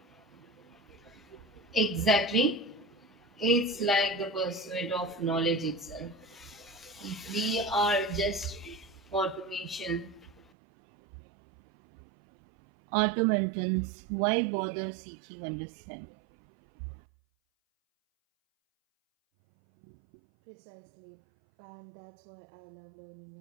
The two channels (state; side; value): drops out; left; at 10.4 s